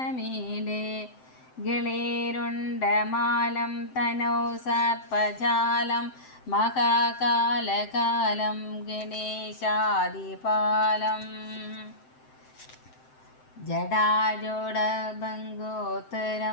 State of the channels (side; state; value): right; late; 7.8 ms